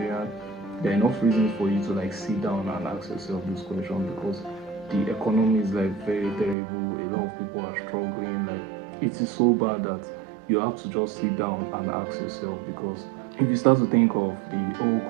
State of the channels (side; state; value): left; drops out; at 6.6 s